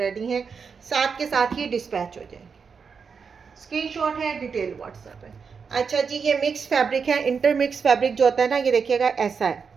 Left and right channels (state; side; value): quieter; left; 5.8 dB